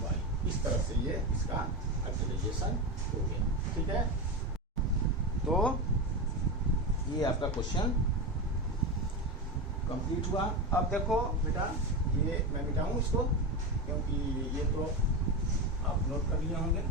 इस तरह से ये इसका फैक्टराइजेशन हो गया, ठीक है। तो ये आपका क्वेश्चन कंप्लीट हुआ। अब देखो बेटा, ये मैं मिटाऊं इसको, क्योंकि ये तो आप नोट कर लिए होंगे,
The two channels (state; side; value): normal; both; correlation 0.17